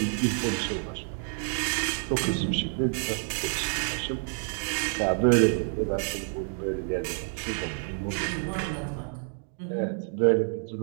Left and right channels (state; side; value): silent; left; 57 dB below the other